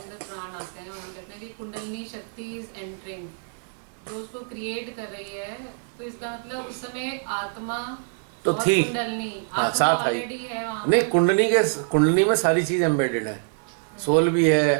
प्राण आते हैं और हम कहते हैं कि कुंडलिनी शक्ति इज एंटरिंग, जो उसको क्रिएट कर रही है। तो इसका मतलब उस समय आत्मा तो और थी, कुंडलिनी हाँ, आत्मा साथ आई। ऑलरेडी है वहाँ पे। नहीं, कुंडली में सारी चीज़ एम्बेडेड है, सोल भी है,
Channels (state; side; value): silent; left; 61 dB below the other